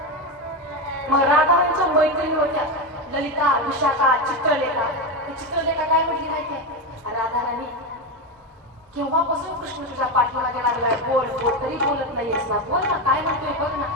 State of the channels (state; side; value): normal; both; correlation 0.14